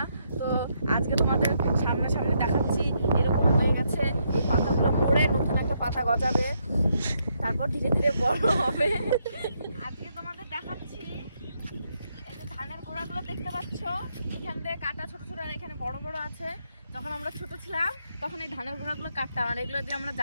তো আজকে তোমাদের সামনে সামনে দেখাচ্ছি। এরকম হয়ে গেছে, এই পাতাগুলো মরে নতুন একটা পাতা গজাবে, তারপর ধীরে ধীরে বড় হবে। আজকে তোমাদের দেখাচ্ছি, এই যে ধানের গোড়াগুলো দেখতে পাচ্ছ, এখান থেকে কাটা ছোট ছোট, আর এখানে বড় বড় আছে। যখন আমরা ছোট ছিলাম তখন এই ধানের গোড়াগুলো কাটতাম, আর এগুলো দিয়ে আমরা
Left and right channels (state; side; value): inverted; both; correlation -0.77